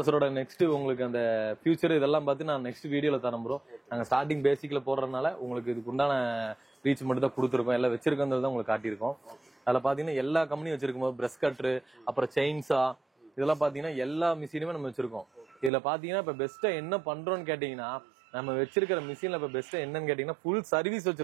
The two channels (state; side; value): drops out; left; at 15.7 s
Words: நெக்ஸ்ட் உங்களுக்கு அந்த ஃபியூச்சர் இதெல்லாம் பார்த்து நான் நெக்ஸ்ட் வீடியோல தரேன் ப்ரோ. நாங்க ஸ்டார்டிங் பேசிக்ல போடுறதுனால உங்களுக்கு இதுக்கு உண்டான ரீச் மட்டும் தான் கொடுத்துருக்கோம். எல்லாம் வச்சிருக்கிறது தான் உங்களுக்கு காட்டியிருக்கோம். அதுல பாத்தீங்கன்னா எல்லா கம்பெனியும் வச்சிருக்கும் போது பிரஷ் கட்ரு அப்புறம் செயின்ஸா இதெல்லாம் பாத்தீங்கன்னா எல்லா மிஷினுமே நம்ம வச்சிருக்கோம். இதுல பாத்தீங்கன்னா இப்ப பெஸ்டா என்ன பண்றோம்னு கேட்டீங்கன்னா நம்ம வச்சிருக்கிற மிஷின்ல இப்ப பெஸ்டா என்னன்னு கேட்டீங்கன்னா ஃபுல் சர்வீஸ்